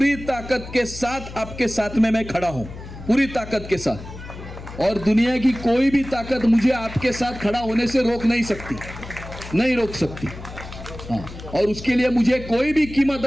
साथ आपके साथ में मैं खड़ा हूं, पूरी ताकत के साथ। और दुनिया की कोई भी ताकत मुझे आपके साथ खड़ा होने से रोक सकती। हाँ, और उसके लिए मुझे कोई भी कीमत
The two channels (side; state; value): left; noise; hum, 13 dB below the sound